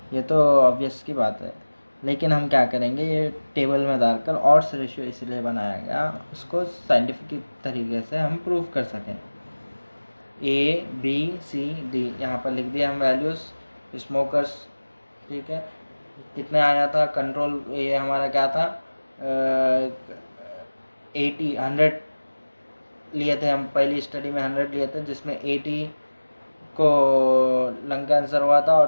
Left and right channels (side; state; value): both; inverted; correlation -1.00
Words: ये तो ऑब्वियस की बात है। लेकिन हम क्या करेंगे, ये टेबल में डालकर ऑड्स रेशियो इसलिए बनाया गया, उसको साइंटिफिक तरीके से हम प्रूव कर सकें। ए बी सी डी यहाँ पर लिख दिया हम वैल्यूज़ स्मोकर्स। ठीक है, कितने आया था कंट्रोल? ये हमारा क्या था? 100 लिए थे हम पहली स्टडी में, 100 लिए थे, जिसमें 80 को लंग कैंसर हुआ था